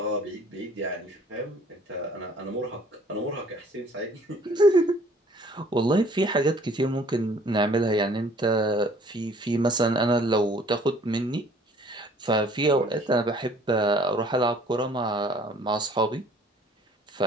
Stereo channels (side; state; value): both; normal; correlation 0.55